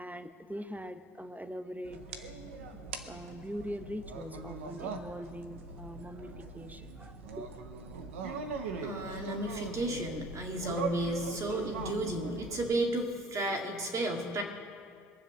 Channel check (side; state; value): both; normal; correlation 0.50